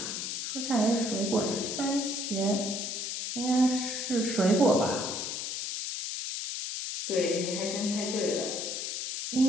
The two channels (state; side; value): noise; left; hiss, 4 dB below the sound